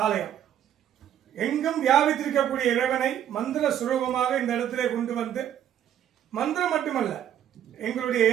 ஆலயம். எங்கும் வியாபித்திருக்கக்கூடிய இறைவனை மந்திர சுரூபமாக இந்த இடத்திலே கொண்டு வந்து, மந்திரம் மட்டுமல்ல, எங்களுடைய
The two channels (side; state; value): left; quieter; 10.4 dB